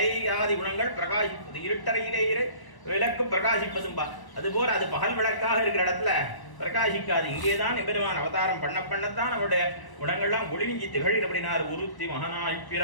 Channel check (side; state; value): right; late; 1.0 ms